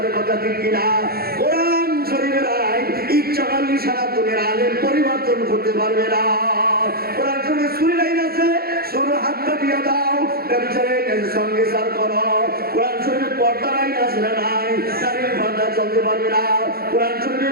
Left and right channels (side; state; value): left; late; 0.44 ms